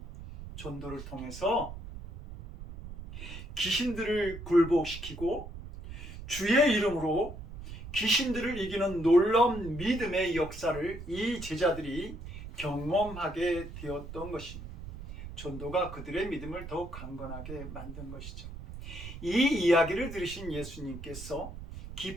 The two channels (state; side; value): noise; right; rumble, 11 dB below the sound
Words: 전도를 통해서 귀신들을 굴복시키고 주의 이름으로 귀신들을 이기는 놀라운 믿음의 역사를 이 제자들이 경험하게 되었던 것입니다. 전도가 그들의 믿음을 더욱 강건하게 만든 것이죠. 이 이야기를 들으신 예수님께서